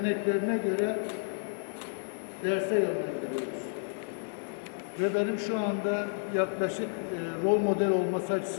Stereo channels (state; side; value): silent; right; digital silence